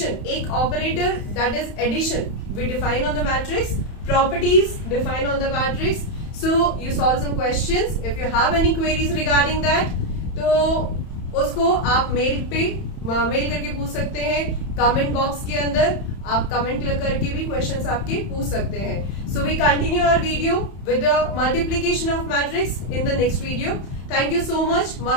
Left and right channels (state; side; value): late; right; 31 ms